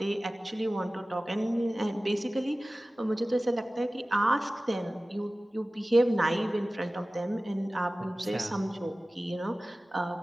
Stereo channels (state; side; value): normal; both; correlation 0.97